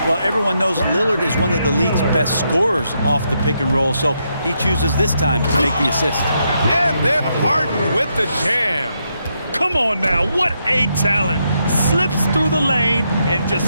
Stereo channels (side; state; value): both; inverted; correlation -0.80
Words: Well, everyone knows Lillard is one of the league's best scorers off the pick and roll, so he chooses this time to make the assist. And then Harden with the jam. Come on now, what a talent. Slips through the lane and just